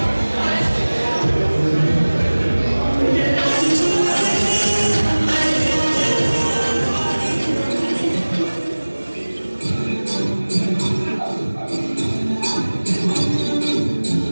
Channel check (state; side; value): inverted; both; correlation -1.00